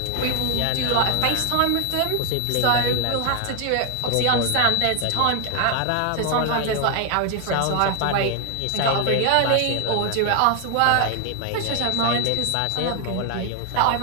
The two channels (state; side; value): different; both; correlation 0.00